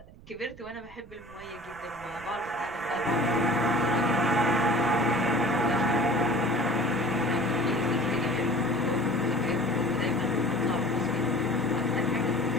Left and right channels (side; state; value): right; noise; rumble, 21 dB below the sound